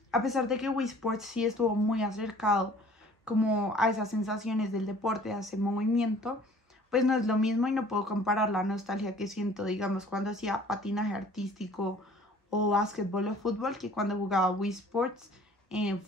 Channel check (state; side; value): normal; both; correlation 0.52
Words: a pesar de que Wii Sports sí estuvo muy acercado como a esas sensaciones del deporte, a ese movimiento, pues no es lo mismo y no puedo comparar la nostalgia que siento, digamos, cuando hacía patinaje artístico o básquetbol o fútbol que cuando jugaba Wii Sports en